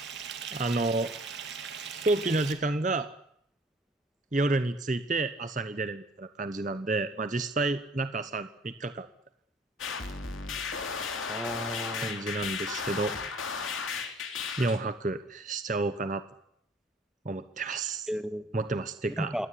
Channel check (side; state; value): both; normal; correlation 0.54